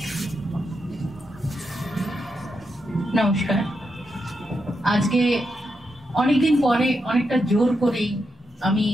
নমস্কার। আজকে অনেকদিন পরে অনেকটা জোর করেই আমি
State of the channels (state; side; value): normal; both; correlation 0.84